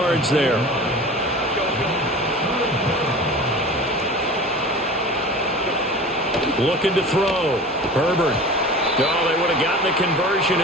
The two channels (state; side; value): normal; both; correlation 0.37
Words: there. Looking to throw. Herbert. Oh, they would have gotten the conversion